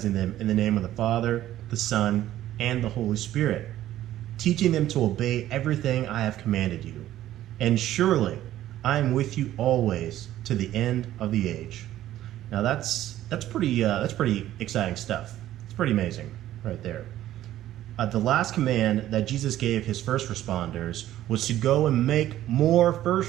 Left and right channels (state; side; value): quieter; left; 13.3 dB